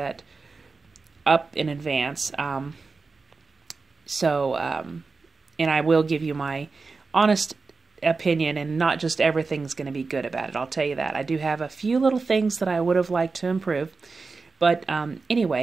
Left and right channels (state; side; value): quieter; left; 4.2 dB